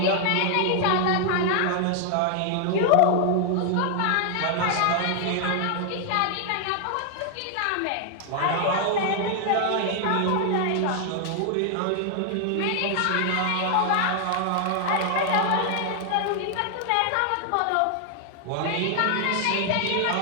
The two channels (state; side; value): different; both; correlation 0.00